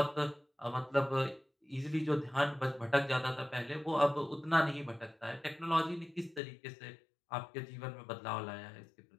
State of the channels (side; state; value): right; drops out; at 6.4 s